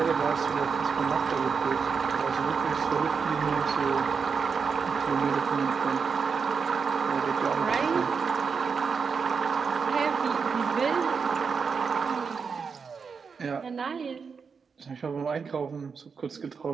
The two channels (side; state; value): left; quieter; 5.6 dB